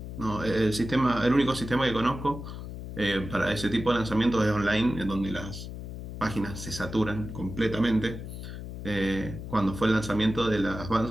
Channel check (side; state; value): left; noise; hum, 9 dB below the sound